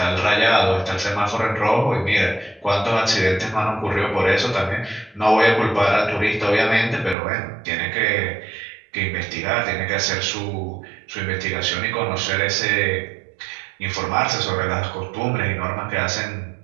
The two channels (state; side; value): drops out; left; at 7.2 s